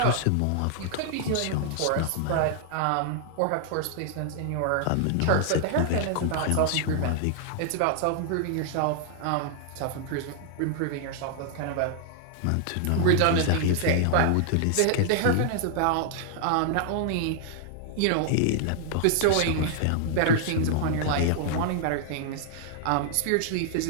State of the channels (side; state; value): both; different; correlation -0.01